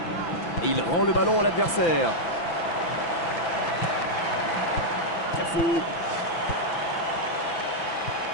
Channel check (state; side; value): late; right; 6.0 ms